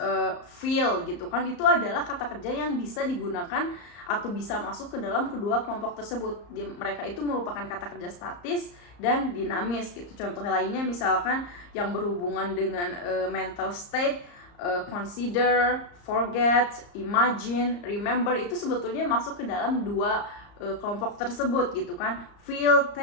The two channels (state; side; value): late; right; 34 ms